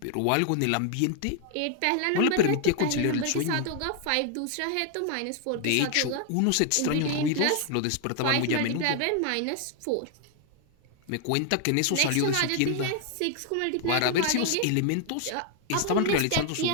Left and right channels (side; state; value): both; different; correlation 0.00